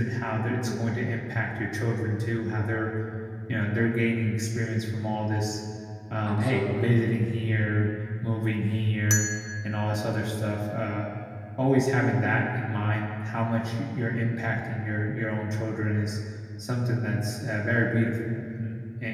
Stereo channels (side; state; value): both; identical; correlation 1.00